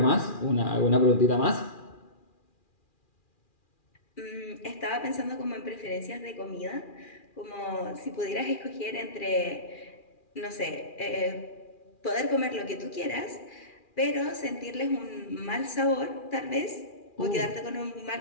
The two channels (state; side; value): late; right; 2.4 ms